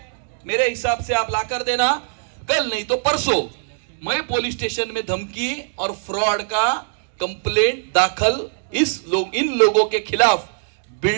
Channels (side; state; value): left; silent; digital silence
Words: मेरे हिसाब से आप लाकर देना. कल नहीं तो परसों मैं पुलिस स्टेशन में धमकी और फ्रॉड का कंप्लेंट दाखल इन लोगों के खिलाफ,